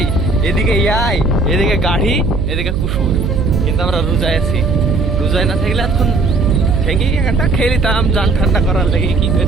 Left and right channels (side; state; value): right; noise; hum, 2 dB below the sound